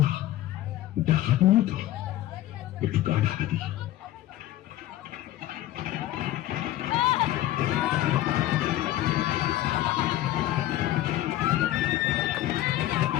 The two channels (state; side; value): quieter; right; 14.4 dB